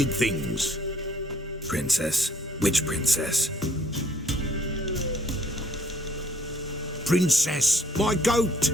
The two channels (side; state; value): both; normal; correlation 0.61